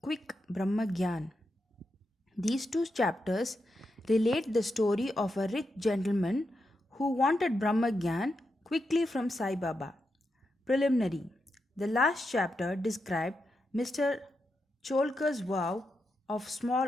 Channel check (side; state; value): both; normal; correlation 0.86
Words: Brahma Gyan. These two chapters relate the story of a rich gentleman who wanted Brahma Gyan quickly from Sai Baba. Preliminary. The last chapter described Mr. Cholkar's vow of